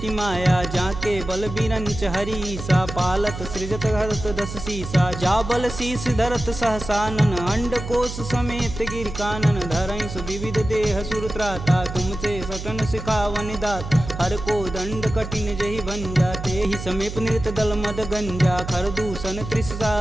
माया। जाके बल बीरंच हरीसा, पालत सृजत हरत दस सीसा। जा बल शीस धरत सहसानन, अंड कोश समेत गिर कानन। धरई सुविविध देह सुर त्राता, तुमसे सटन सिखावन दात। हर को दंड कठिन जहि भंजा, तेहि समीप नृत दल मद गंजा। खरदूषण त्रिषा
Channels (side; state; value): right; noise; hum, 8 dB below the sound